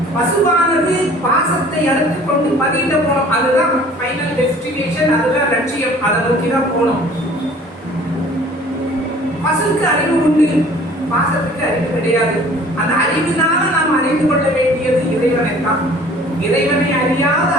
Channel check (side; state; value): both; normal; correlation 0.50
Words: பசுவானது பாசத்தை அறுத்து கொண்டு பதியிட போனோம். அதுதான் ஃபைனல் டெஸ்டினேஷன், அதுதான் லட்சியம். அதை நோக்கி தான் போனோம். பசுக்கு அறிவு உண்டு, பாசத்துக்கு அறிவு கிடையாது. அந்த அறிவினால நாம் அறிந்து கொள்ள வேண்டியது இறைவனை தான். இறைவனை அறியாத